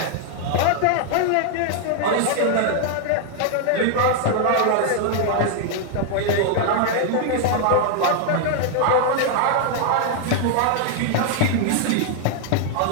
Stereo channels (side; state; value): both; different; correlation 0.00